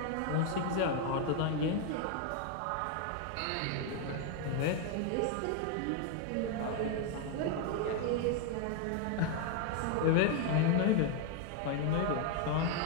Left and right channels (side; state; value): both; different; correlation 0.01